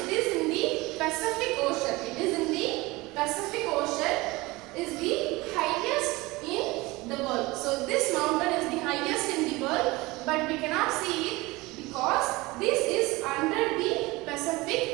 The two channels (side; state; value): left; quieter; 21.8 dB